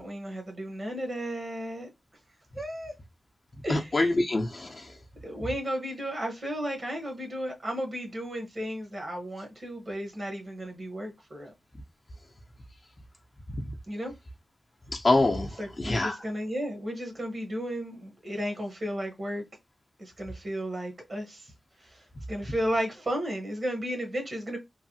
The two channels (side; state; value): both; normal; correlation 0.92